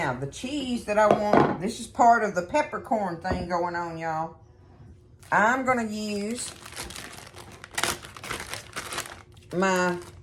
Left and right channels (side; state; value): both; identical; correlation 1.00